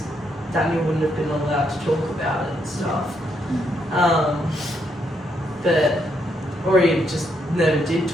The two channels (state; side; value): normal; both; correlation 0.77